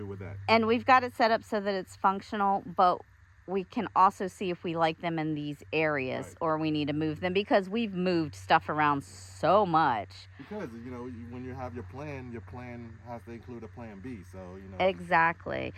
with that. And we've got it set up so that it's functional, but we can also see if we like them in these areas or we need to move them because we've moved stuff around so much. Because, when you have your plan has to include a plan B. So, Exactly.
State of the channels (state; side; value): identical; both; correlation 1.00